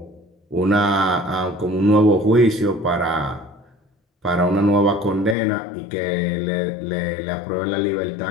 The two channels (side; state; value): right; drops out; at 5.4 s